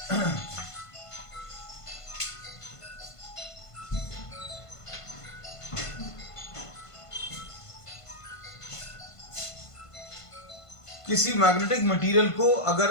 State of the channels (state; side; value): late; right; 1.5 ms